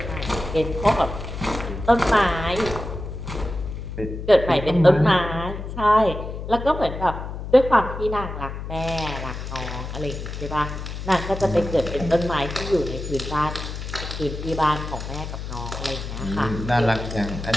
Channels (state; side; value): noise; left; hum, 7 dB below the sound